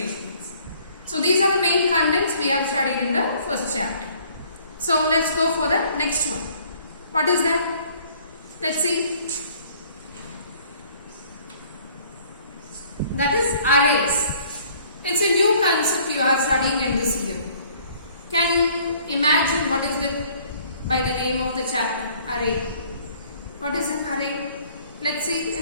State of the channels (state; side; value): inverted; both; correlation -0.58